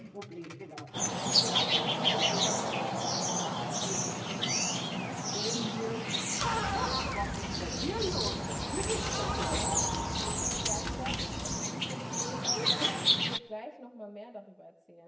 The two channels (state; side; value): identical; both; correlation 1.00